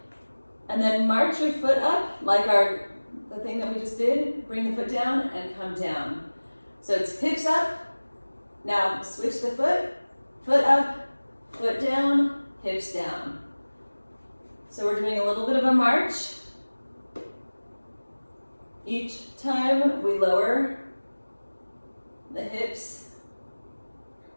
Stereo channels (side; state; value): both; inverted; correlation -1.00